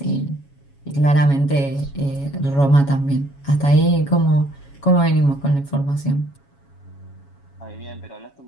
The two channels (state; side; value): late; right; 7.2 ms